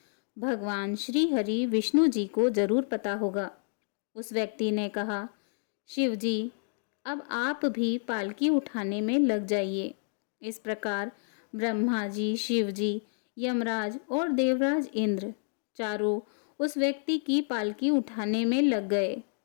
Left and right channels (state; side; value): silent; right; digital silence